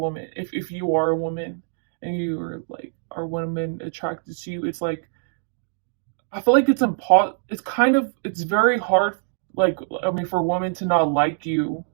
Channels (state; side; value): silent; left; 63 dB below the other